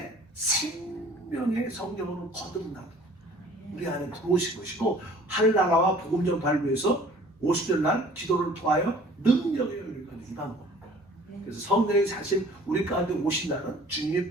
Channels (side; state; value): both; normal; correlation 0.51